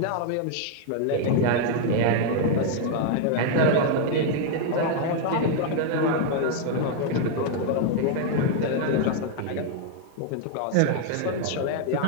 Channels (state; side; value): different; both; correlation 0.00